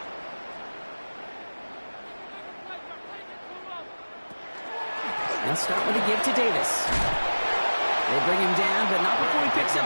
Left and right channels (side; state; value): both; inverted; correlation -1.00